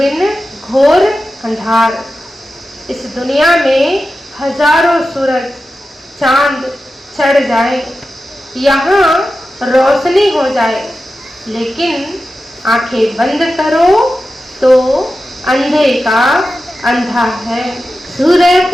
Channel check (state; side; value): normal; both; correlation 0.92